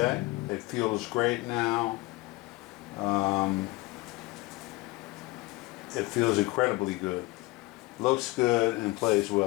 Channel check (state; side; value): quieter; right; 21.6 dB